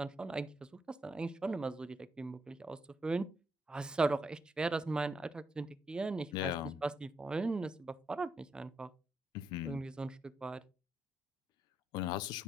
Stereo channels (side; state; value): both; normal; correlation 0.78